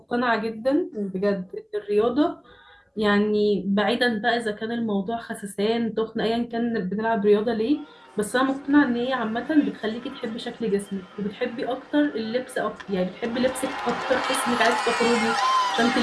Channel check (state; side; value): identical; both; correlation 1.00